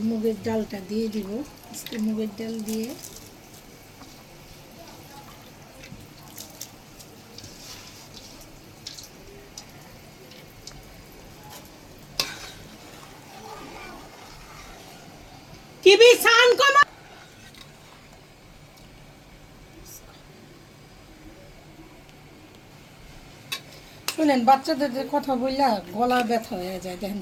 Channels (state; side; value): identical; both; correlation 1.00